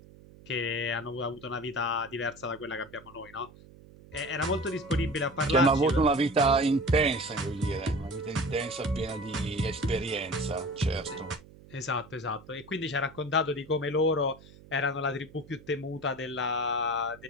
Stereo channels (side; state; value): right; noise; hum, 22 dB below the sound